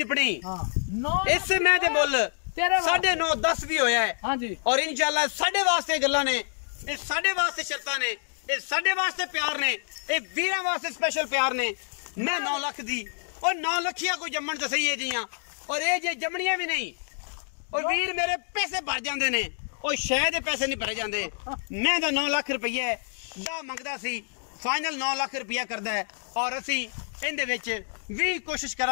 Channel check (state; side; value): silent; right; digital silence